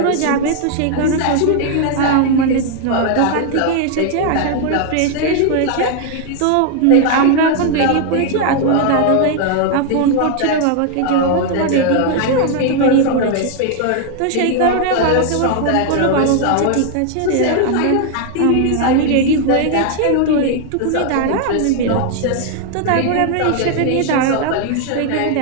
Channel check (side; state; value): both; different; correlation 0.00